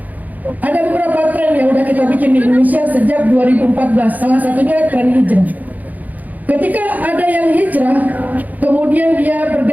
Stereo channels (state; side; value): late; left; 0.080 ms